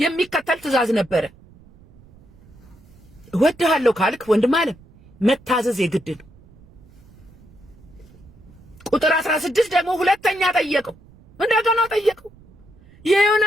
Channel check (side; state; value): right; noise; rumble, 25 dB below the sound